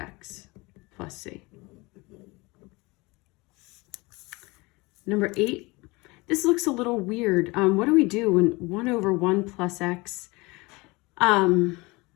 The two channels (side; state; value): right; quieter; 24.3 dB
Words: plus c. Number 8, this looks a little weird. What do we do when 1 over 1 plus x,